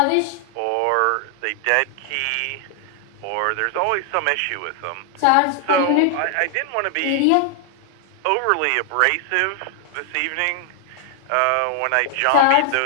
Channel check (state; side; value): different; both; correlation 0.00